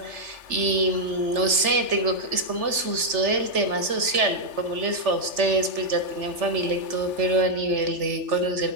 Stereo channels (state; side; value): late; left; 3.4 ms